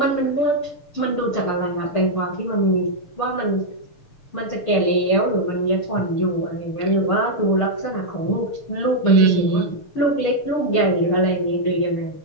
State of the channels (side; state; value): right; late; 6.8 ms